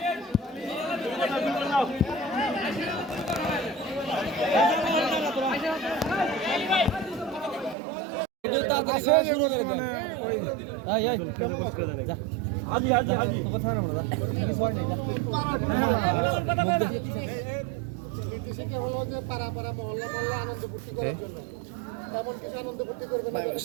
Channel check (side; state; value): left; drops out; at 7.8 s